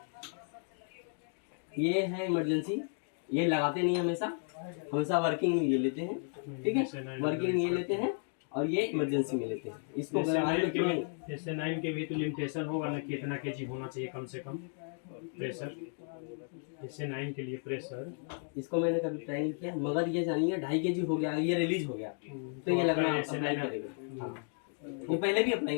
ये है इमरजेंसी, ये लगाते नहीं हमेशा, हमेशा वर्किंग में ये लेते हैं, ठीक है। वर्किंग में ये लेते हैं और ये इमरजेंसी में लेते हैं। इसको SA9 के भी तो लिमिटेशन होगा ना, कितना केजी होना चाहिए कम से कम प्रेशर, SA9 के लिए प्रेशर। इसको मैंने कभी ट्राई नहीं किया, मगर ये जानिए 2.5 kg हो गया, ये रिलीज हो गया तो ये लगना अप्लाई करेगा। हाँ, ये पहले भी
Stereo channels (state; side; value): silent; right; 55 dB below the other